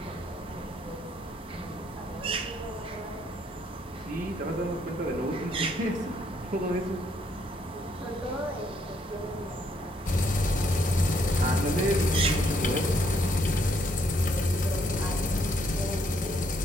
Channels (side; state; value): both; normal; correlation 0.71